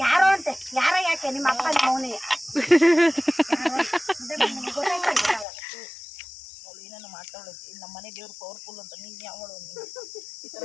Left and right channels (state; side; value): drops out; right; at 5.5 s